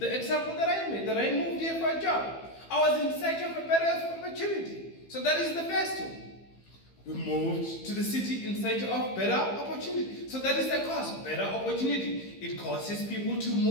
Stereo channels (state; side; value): late; right; 15 ms